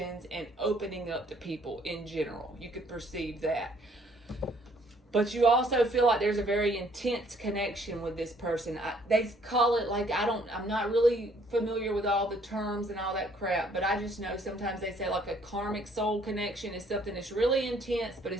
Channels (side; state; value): both; normal; correlation 0.63